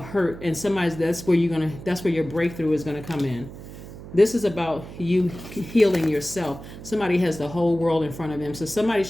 hurt. And that's where your breakthrough is gonna come in. This is about you healing yourself. Somebody has the whole world in front of them. So somebody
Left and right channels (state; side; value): noise; right; hum, 14 dB below the sound